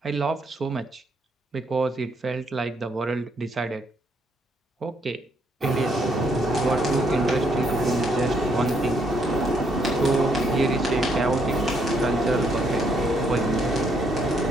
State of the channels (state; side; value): normal; both; correlation 0.72